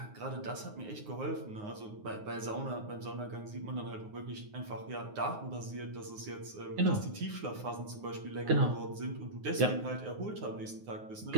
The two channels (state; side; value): late; left; 9.5 ms